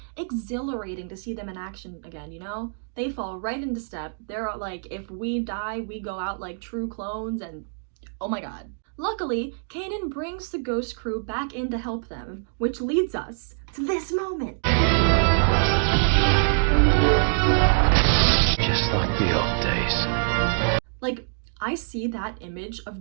exhilarating to see them in action again, you know? They fall right into step. They're like, if we die, we go out like true clones, and oh my god. Luckily, Kanan brings the Ghost Crew back in to help them, which leads us to this moment. Just like the old days. Like, I see that image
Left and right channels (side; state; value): left; silent; digital silence